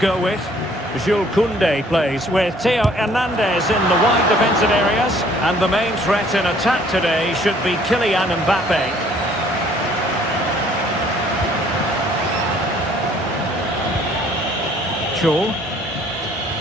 with. Jules Koundé plays with Theo Hernandez in the wide defensive areas. And the main threat in attack today should be Kylian Mbappe. Chol.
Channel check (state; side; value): normal; both; correlation 0.59